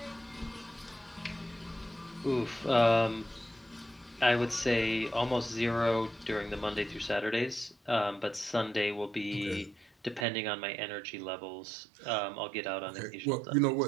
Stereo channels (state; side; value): drops out; left; at 10.2 s